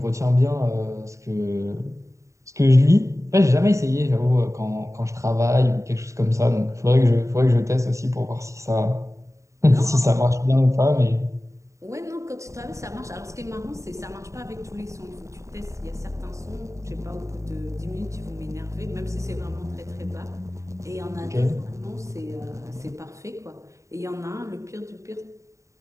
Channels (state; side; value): late; left; 0.15 ms